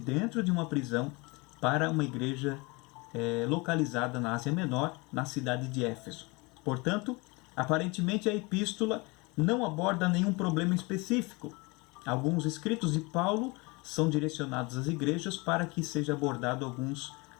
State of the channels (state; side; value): quieter; right; 26.8 dB